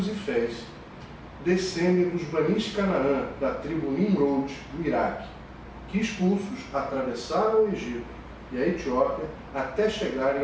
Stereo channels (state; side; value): identical; both; correlation 1.00